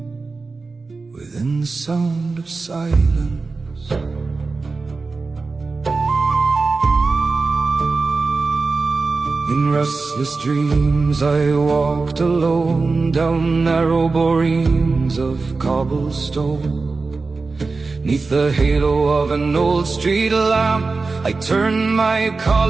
within the sound of silence. In restless dreams I walked alone down narrow boreens of cobblestone. Neath the halo of an old street lamp, I turned my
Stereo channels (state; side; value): quieter; left; 4.0 dB